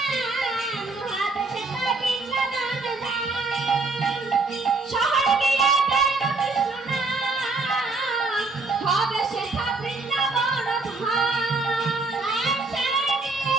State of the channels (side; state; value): left; quieter; 3.6 dB